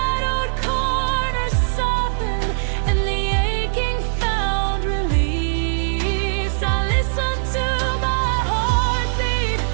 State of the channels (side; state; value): left; silent; digital silence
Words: corners softened and the aching found release, I listened to my heartbeat,